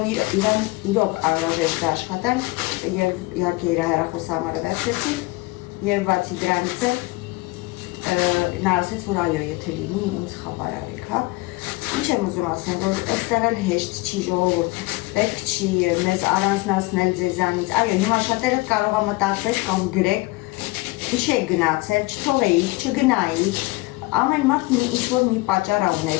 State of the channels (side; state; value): right; quieter; 23.1 dB